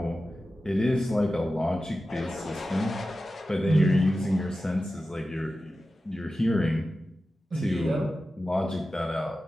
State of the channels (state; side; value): normal; both; correlation 0.94